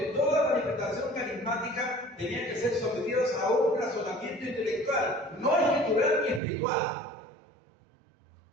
toda manifestación carismática tenía que ser sometida a un razonamiento intelectual, no escritural ni espiritual.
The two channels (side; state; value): left; drops out; at 6.4 s